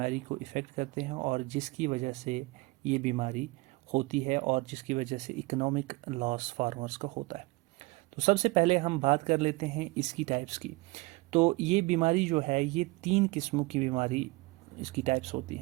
को इफ़ेक्ट करते हैं और जिसकी वजह से ये बीमारी होती है और जिसकी वजह से इकोनॉमिक लॉस फार्मर्स का होता है। तो सबसे पहले हम बात कर लेते हैं इसकी टाइप्स की। तो ये बीमारी जो है ये 3 किस्मों की बीमारी इसकी टाइप्स होती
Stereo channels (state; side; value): quieter; left; 23.1 dB